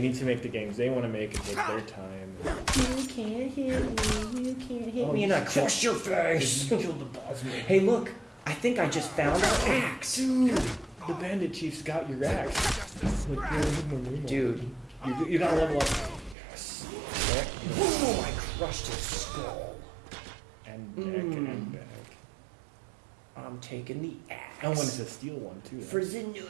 to make the games they want to make and take their time. You can't hit me, and I crush your face. You killed the boss man. Hey, look! I think I just found our axe. Dude, the bandit chief's got your axe. Dude, you gotta level up. Yes. Boom! I crushed his skull. And back and back. I'm taking the axe. I wanted to steal one too. For the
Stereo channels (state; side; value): drops out; left; at 16.4 s